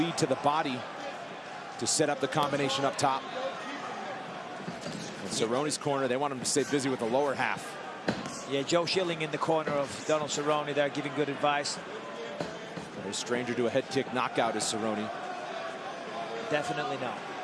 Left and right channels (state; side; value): identical; both; correlation 1.00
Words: to the body to set up the combination up top. In Cerrone's corner, they want him to stay busy with the lower half. Yeah, Joe Schilling in the corner of Donald Cerrone there, giving good advice. A stranger to a head kick knockout is Cerrone. Definitely not.